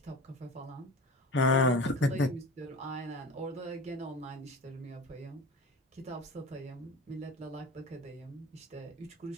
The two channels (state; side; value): normal; both; correlation 0.34